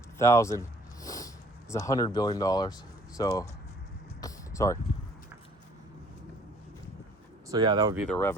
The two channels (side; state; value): both; normal; correlation 0.57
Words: 1,000 is $100 billion. So yeah, that would be their